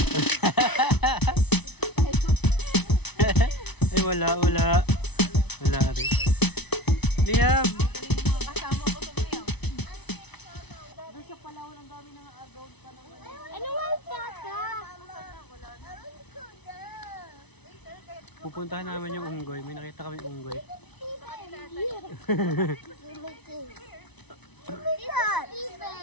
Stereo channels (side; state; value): right; late; 0.99 ms